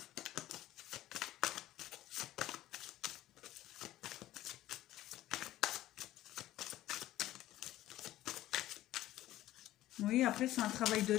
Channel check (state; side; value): quieter; right; 14.7 dB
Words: Oui, après, c'est un travail de